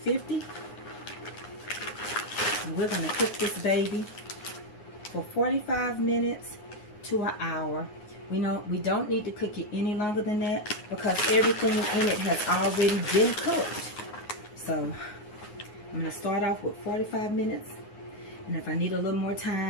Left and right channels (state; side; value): late; right; 9.5 ms